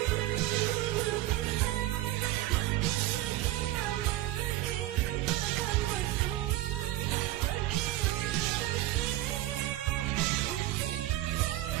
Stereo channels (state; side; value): quieter; left; 15.8 dB